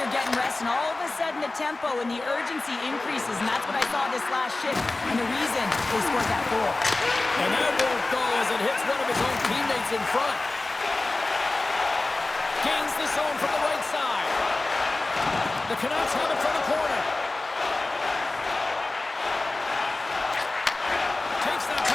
getting rest, and all of a sudden the tempo and the urgency increases, and that's what I saw this last shift, and the reason they scored that goal. And that won't go as it hits one of his own teammates in front. Gains the zone from the right side. The Canucks have it from the corner. Takes that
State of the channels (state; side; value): quieter; right; 3.1 dB